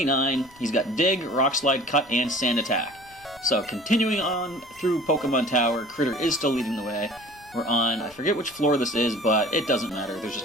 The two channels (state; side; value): noise; left; rumble, 27 dB below the sound